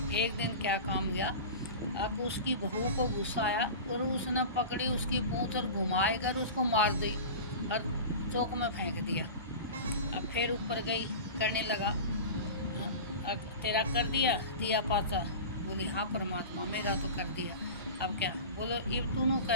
एक दिन क्या काम गया, अब उसकी बहू को गुस्सा आया और उसने पकड़ी उसकी पूंछ और घुमाए कर उसको मार दी और चौक में फेंक दिया। अब फिर ऊपर गई, करने लगा, अब तेरा कर दिया पाचा। बोली, हाँ परमात्मा, मेरा तो कर दिया, अब क्या। बोलो, अब तूनू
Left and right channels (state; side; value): inverted; both; correlation -0.32